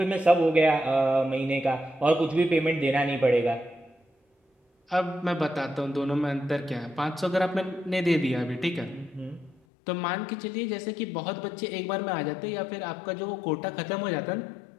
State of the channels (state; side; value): drops out; right; at 9.6 s